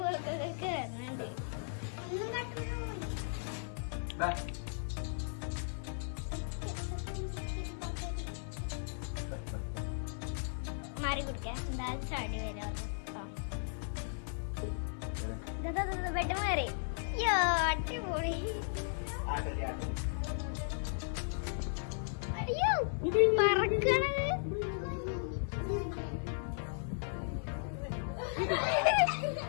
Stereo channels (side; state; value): right; silent; digital silence